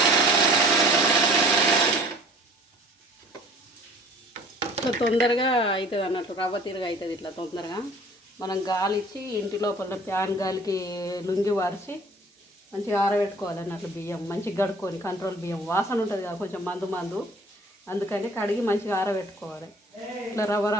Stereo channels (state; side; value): normal; both; correlation 0.50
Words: ఇట్లా తొందరగా అవుతుంది అన్నట్టు, రవ్వ తిరగ అవుతుంది ఇట్లా తొందరగా. మనం గాలి ఇచ్చి ఇంటి లోపల ఫ్యాన్ గాలికి లుంగి వారిసి మంచిగా ఆరబెట్టుకోవాలి అన్నట్లు. బియ్యం మంచిగా కడుక్కొని, కంట్రోల్ బియ్యం వాసన ఉంటుంది కదా కొంచెం మందు, అందుకని కడిగి మంచిగా ఆరబెట్టుకోవాలి. ఇట్లా రవ్వ